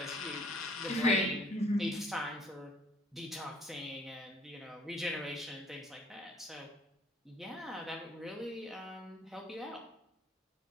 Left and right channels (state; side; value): normal; both; correlation 0.58